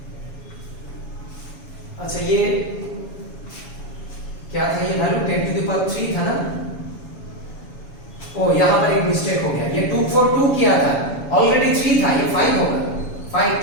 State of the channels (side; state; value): right; late; 7.1 ms